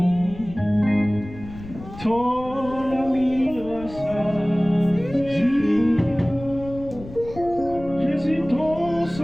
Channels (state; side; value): noise; left; rumble, 15 dB below the sound